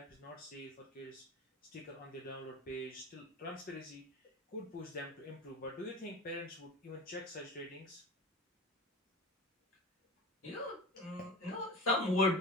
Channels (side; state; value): both; normal; correlation 0.31